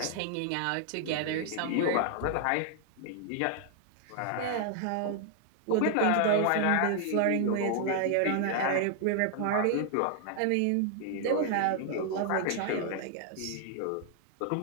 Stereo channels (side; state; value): both; different; correlation 0.00